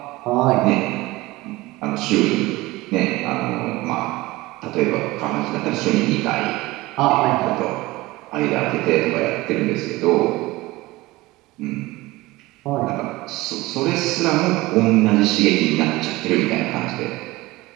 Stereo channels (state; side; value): quieter; left; 20.0 dB